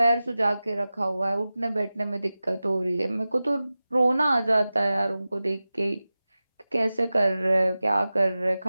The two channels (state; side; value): inverted; both; correlation -0.96